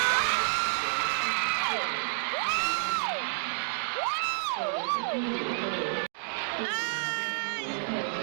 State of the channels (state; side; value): silent; left; digital silence